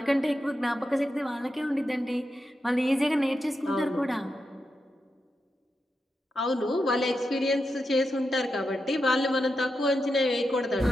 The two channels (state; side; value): normal; both; correlation 0.88